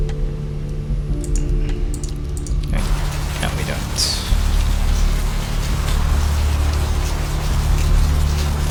Wait, no, we don't.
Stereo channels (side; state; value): both; identical; correlation 1.00